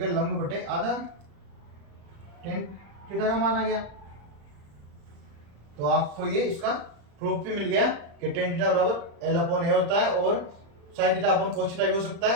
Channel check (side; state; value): left; late; 35 ms